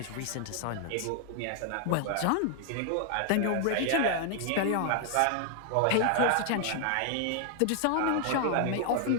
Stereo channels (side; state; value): both; different; correlation 0.00